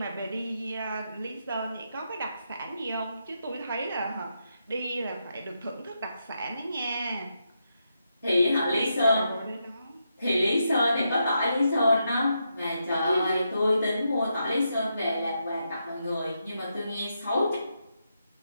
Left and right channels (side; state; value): both; inverted; correlation -0.83